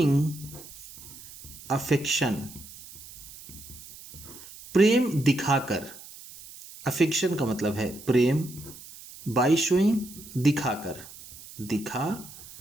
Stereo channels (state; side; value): noise; right; hiss, 17 dB below the sound